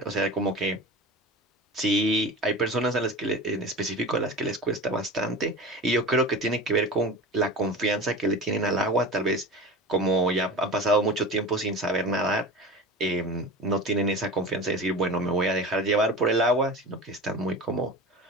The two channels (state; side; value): normal; both; correlation 0.33